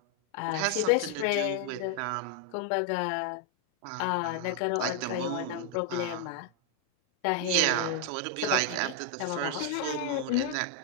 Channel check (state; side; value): different; both; correlation 0.01